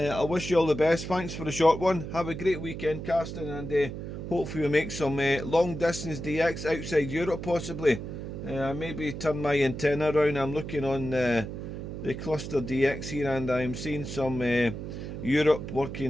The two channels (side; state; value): right; noise; hum, 7 dB below the sound